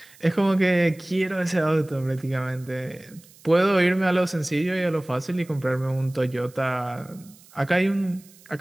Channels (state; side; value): noise; right; hiss, 25 dB below the sound